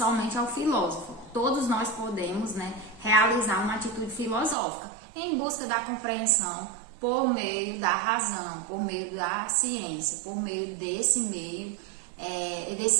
ao filósofo. Todos nós podemos, né, realizar uma atitude filosófica em busca da compreensão por meio da razão, por meio da ciência, por meio desse meio,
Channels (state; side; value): drops out; left; at 4.5 s